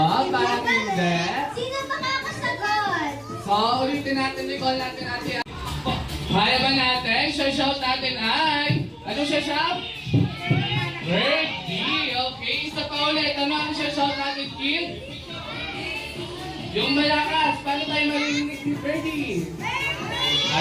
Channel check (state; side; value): identical; both; correlation 1.00